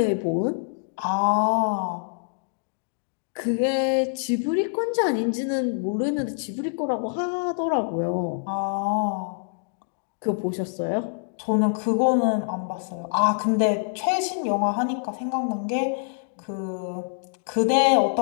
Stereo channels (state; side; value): silent; right; digital silence